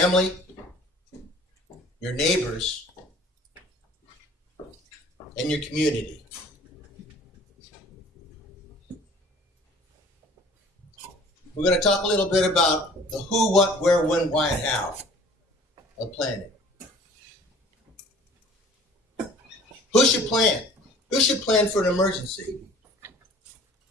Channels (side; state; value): both; normal; correlation 0.50